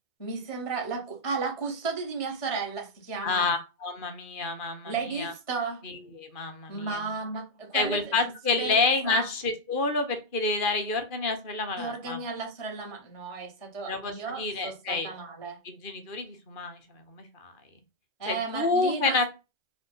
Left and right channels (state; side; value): late; right; 2.4 ms